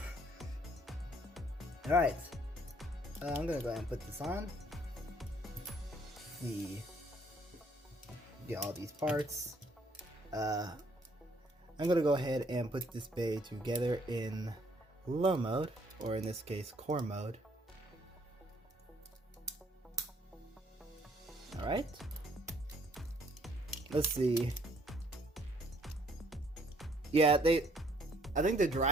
Alright, I'm gonna go ahead and put this on. Get all these parts. I'm gonna go ahead and put this Bey together in low mode, or in this case, core mode. Alright. Let's see. Yeah, I think the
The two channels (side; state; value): both; normal; correlation 0.64